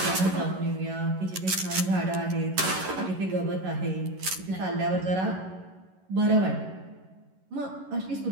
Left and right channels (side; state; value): left; late; 11 ms